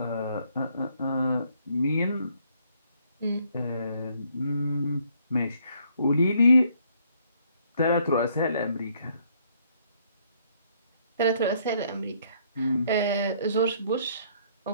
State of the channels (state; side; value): inverted; both; correlation -0.67